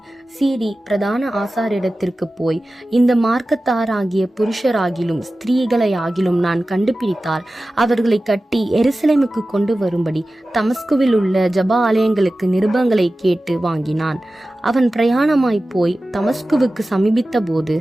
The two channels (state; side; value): normal; both; correlation 0.95